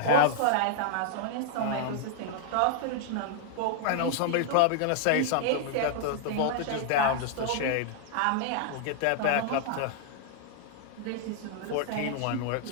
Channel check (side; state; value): both; different; correlation 0.00